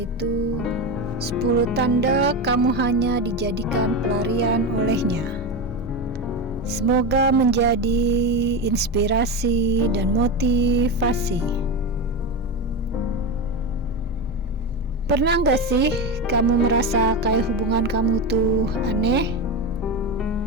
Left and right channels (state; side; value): normal; both; correlation 0.18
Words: 10 tanda kamu hanya dijadikan pelarian olehnya. Semoga menjadi inspirasi dan motivasi. Pernah gak sih kamu merasa kayak hubungan kamu tuh aneh?